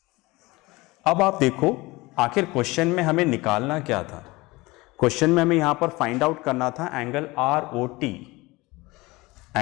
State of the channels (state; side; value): quieter; right; 22.0 dB